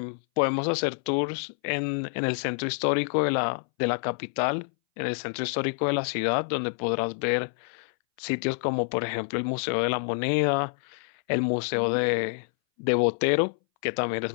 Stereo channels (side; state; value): right; silent; 60 dB below the other